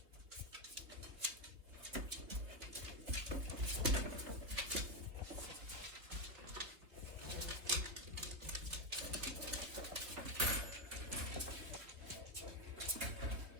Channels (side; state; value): left; late; 3.2 ms